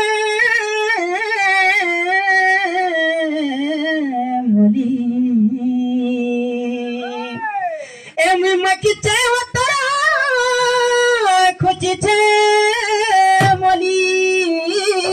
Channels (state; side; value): identical; both; correlation 1.00